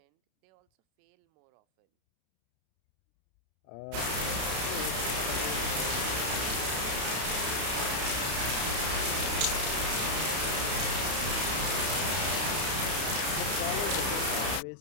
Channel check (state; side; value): late; left; 32 ms